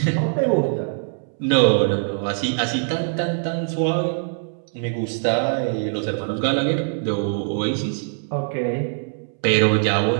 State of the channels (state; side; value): silent; left; 64 dB below the other